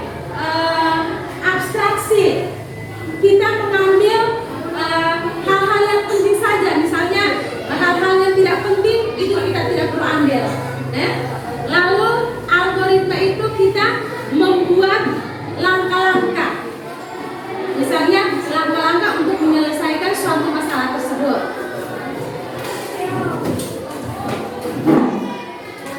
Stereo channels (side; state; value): both; identical; correlation 1.00